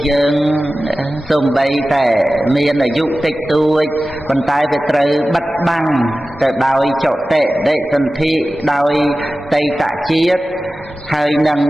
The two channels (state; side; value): normal; both; correlation 0.95